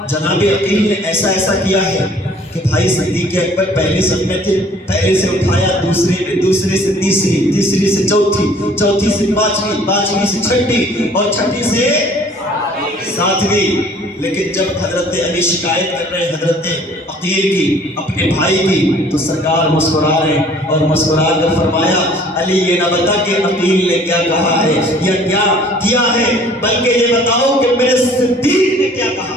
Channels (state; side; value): normal; both; correlation 0.54